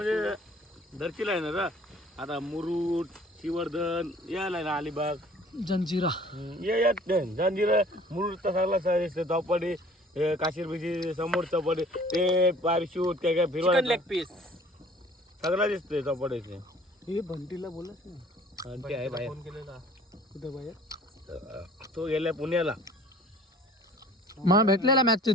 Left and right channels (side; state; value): both; normal; correlation 0.51